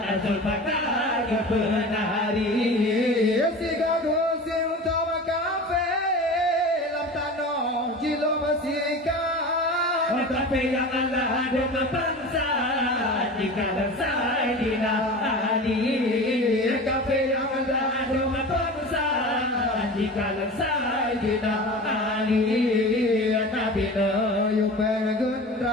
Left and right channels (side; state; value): both; normal; correlation 0.34